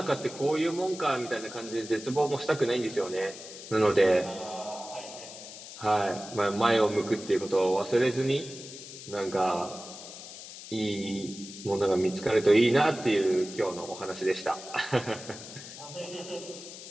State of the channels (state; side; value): noise; left; hiss, 13 dB below the sound